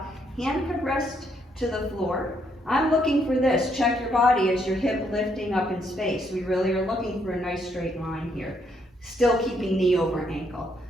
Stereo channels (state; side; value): normal; both; correlation 0.73